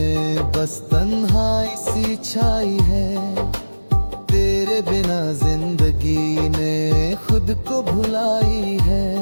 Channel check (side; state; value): both; inverted; correlation -1.00